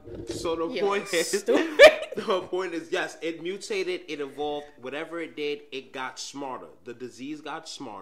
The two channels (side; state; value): both; identical; correlation 1.00